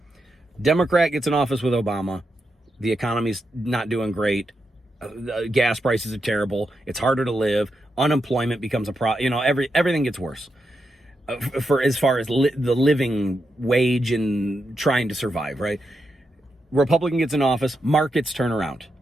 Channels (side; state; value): both; normal; correlation 0.85